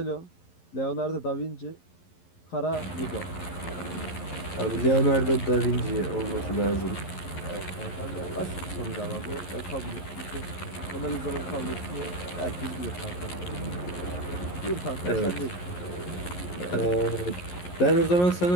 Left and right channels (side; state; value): right; late; 11 ms